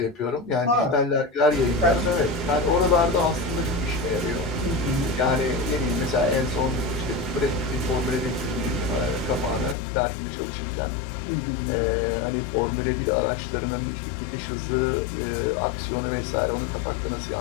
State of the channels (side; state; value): right; drops out; at 9.8 s